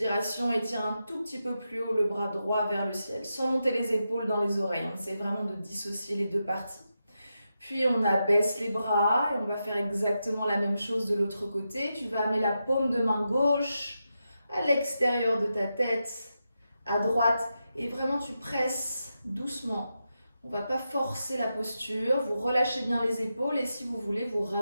étire un tout petit peu plus haut le bras droit vers le ciel, sans monter les épaules dans les oreilles. On essaie vraiment de dissocier les deux parties. Puis on abaisse les bras et on va faire exactement la même chose de l'autre côté. Tu vas amener la paume de main gauche à l'extérieur de ta tête, à droite, et vraiment tu presses doucement. On ne va pas forcer la posture, vous relâchez bien les épaules et si vous voulez, vous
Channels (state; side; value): inverted; both; correlation -0.88